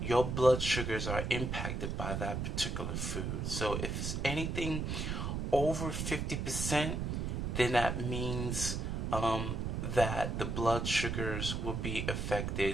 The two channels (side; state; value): right; noise; rumble, 2 dB below the sound